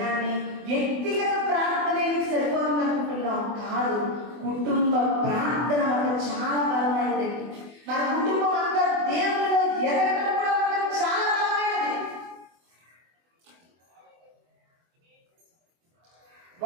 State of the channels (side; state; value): left; late; 24 ms